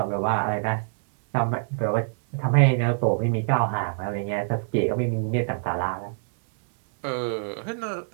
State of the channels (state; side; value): silent; left; 60 dB below the other